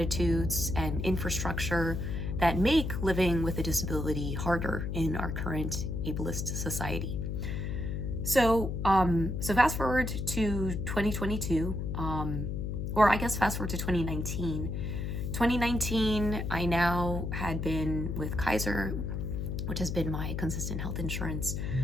and infrastructure that make living with a disability harder in our current ableist society. So fast forward to 2022, or I guess fast forward to 2019. 2019, I now had been with Kaiser, which has been my consistent health insurance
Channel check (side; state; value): left; noise; hum, 2 dB below the sound